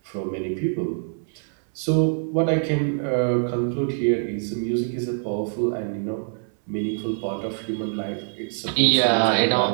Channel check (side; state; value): left; silent; 62 dB below the other